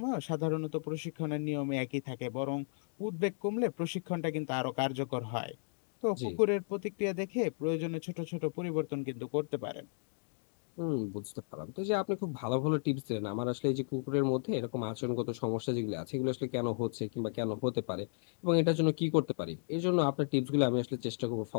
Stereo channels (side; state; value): right; silent; digital silence